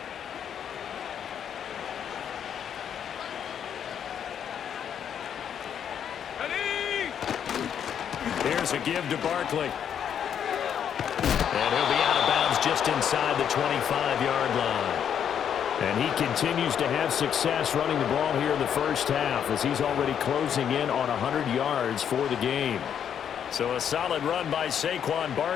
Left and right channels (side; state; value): right; quieter; 8.6 dB